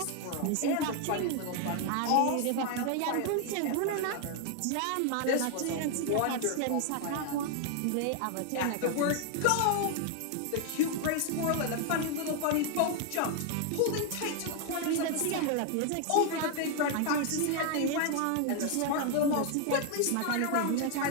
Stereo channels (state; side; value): different; both; correlation 0.00